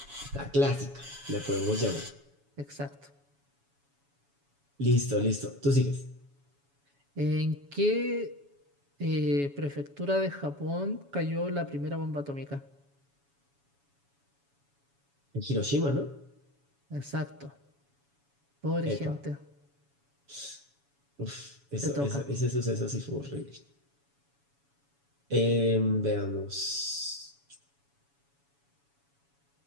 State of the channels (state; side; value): late; left; 7.1 ms